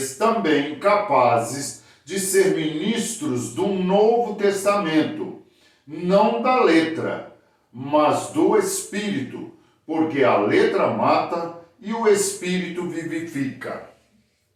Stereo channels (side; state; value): both; identical; correlation 1.00